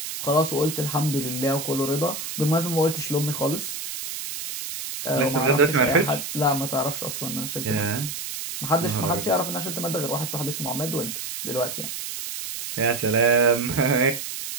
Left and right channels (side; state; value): right; noise; hiss, 6 dB below the sound